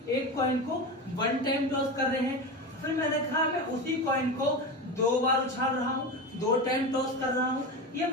एक कॉइन को 1 टाइम टॉस कर रहे हैं। फिर मैंने कहा मैं उसी कॉइन को 2 बार उछाल रहा हूँ, 2 टाइम टॉस कर रहा हूँ। ये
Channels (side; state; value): both; normal; correlation 0.23